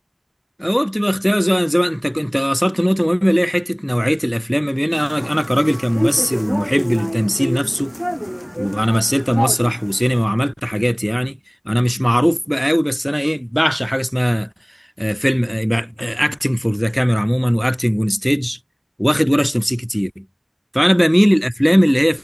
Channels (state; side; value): identical; both; correlation 1.00